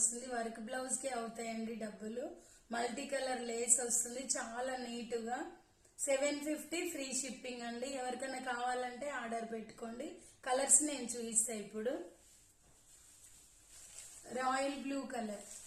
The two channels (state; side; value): identical; both; correlation 1.00